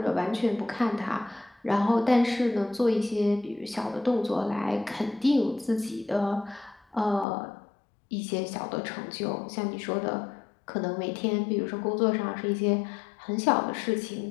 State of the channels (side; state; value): right; drops out; at 7.2 s